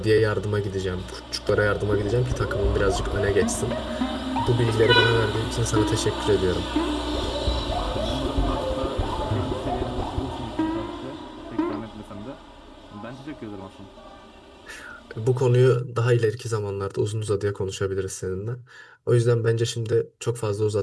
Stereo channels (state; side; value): identical; both; correlation 1.00